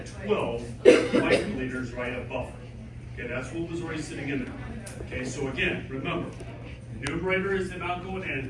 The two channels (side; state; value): both; identical; correlation 1.00